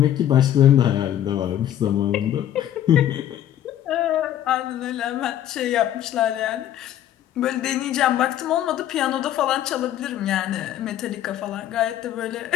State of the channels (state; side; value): quieter; right; 11.5 dB